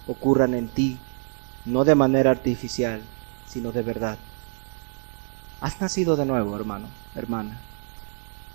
ocurran en ti, no de manera artificial, sino de verdad. Has nacido de nuevo, hermano, hermana.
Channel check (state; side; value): silent; left; 61 dB below the other